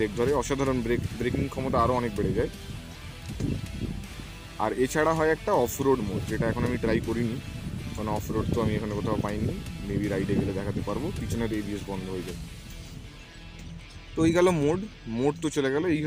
ধরে, অসাধারণ ব্রেকিং ক্ষমতা আরও অনেক বেড়ে যায়। আর এছাড়া হয় একটা অফ রোড মোড, যেটা এখন আমি ট্রাই করিনি, কারণ অফ রোড তো আমি এখানে কোথাও পাইনি, মেবি রাইডে গেলে দেখাতে পারবো। পিছনের এবিএস বন্ধ হয়ে যায়। তো এই গেল মোড তো চলে গেল। এই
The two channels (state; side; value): identical; both; correlation 1.00